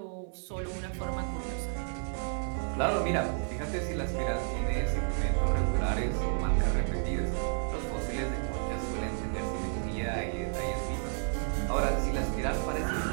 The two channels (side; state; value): left; silent; 57 dB below the other